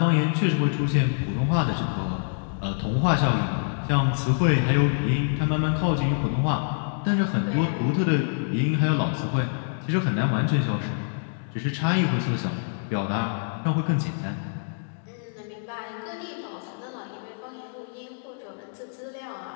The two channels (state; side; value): silent; right; digital silence